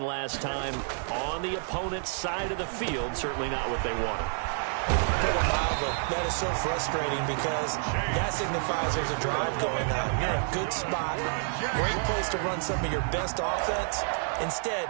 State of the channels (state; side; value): silent; left; 59 dB below the other